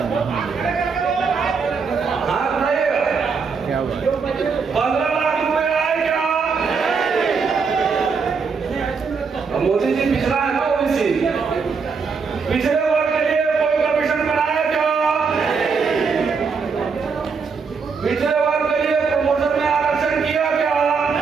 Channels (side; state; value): left; quieter; 5.3 dB